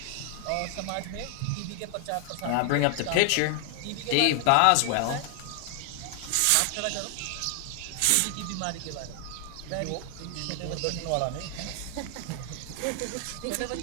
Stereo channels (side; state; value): both; different; correlation 0.00